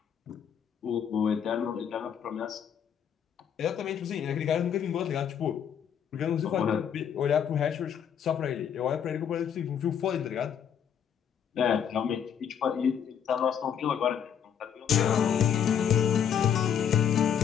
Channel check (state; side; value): quieter; right; 8.4 dB